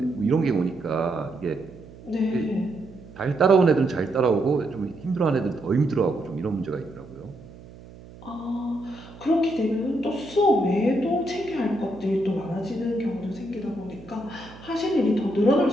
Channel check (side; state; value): right; noise; hum, 19 dB below the sound